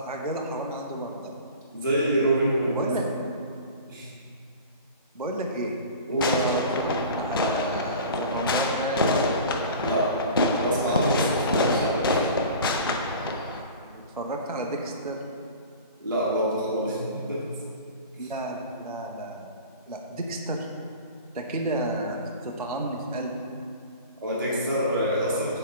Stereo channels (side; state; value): both; inverted; correlation -0.39